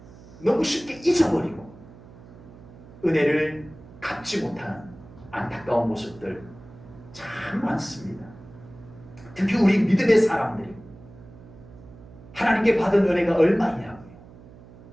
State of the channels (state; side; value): noise; right; hum, 20 dB below the sound